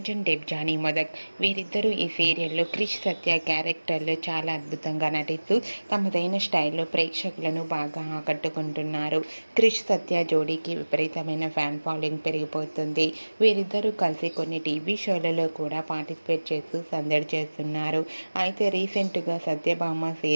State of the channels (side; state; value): both; inverted; correlation -1.00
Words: Debjani Modak వీరిద్దరూ ఈ సీరియల్లో క్రిష్ సత్య క్యారెక్టర్లో చాలా అద్భుతంగా నటిస్తూ తమదైన స్టైల్లో ప్రేక్షకులను బాగా ఆకట్టుకుంటున్నారు. క్రిష్ సత్య జోడీకి విపరీతమైన ఫ్యాన్ ఫాలోయింగ్ పెరిగిపోతుంది. వీరిద్దరూ కలిసి కొన్ని టీవీ షోలలో కూడా పార్టిసిపేట్ చేస్తూ సందడి చేస్తున్నారు. అయితే రీసెంట్గా Satyabhama